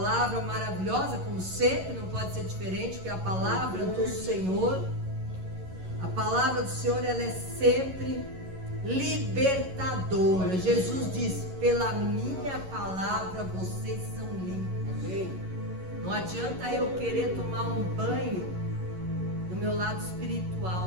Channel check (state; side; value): late; left; 11 ms